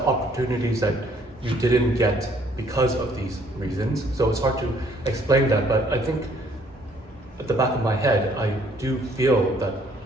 opportunities that you didn't get because of these reasons. So it's hard to explain that, but I think at the back of my head, I do feel that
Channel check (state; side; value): normal; both; correlation 0.63